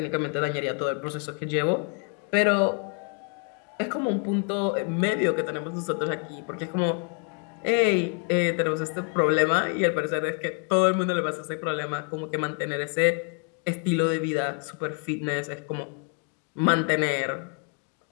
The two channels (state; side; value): quieter; right; 39.7 dB